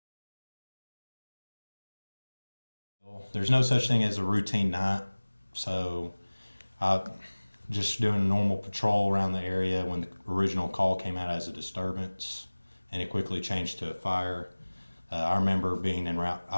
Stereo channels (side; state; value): both; inverted; correlation -1.00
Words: There's no such thing as a routine night, so I just doing a normal patrol around the area when the original call came out as a disturbance, and it quickly changed to a fire. I remember being en route.